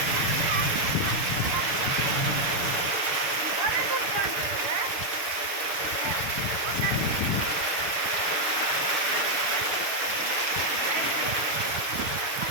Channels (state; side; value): late; left; 6.8 ms